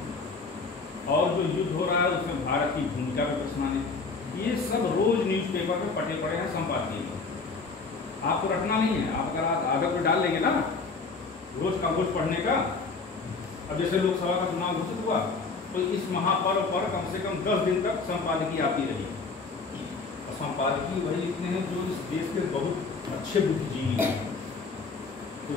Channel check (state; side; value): quieter; right; 4.3 dB